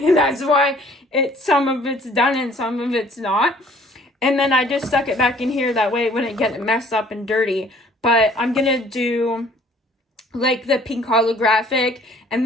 some of it's done and some of it's not. And then I just stuck it back in here, that way it wouldn't get messed up and dirty. But I'm gonna do the pink holographic, and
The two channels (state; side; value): normal; both; correlation 0.57